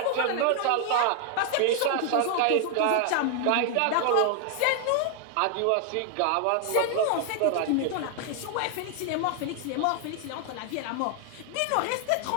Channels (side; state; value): both; different; correlation 0.00